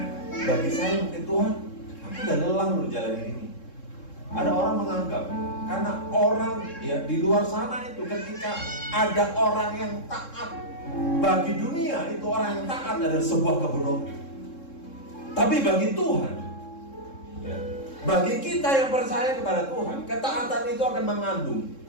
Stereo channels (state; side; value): late; right; 3.7 ms